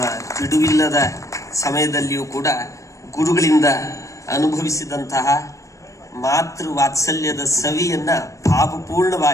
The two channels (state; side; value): late; right; 0.15 ms